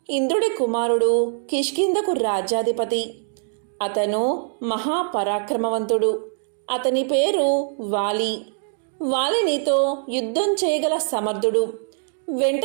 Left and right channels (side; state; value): left; silent; digital silence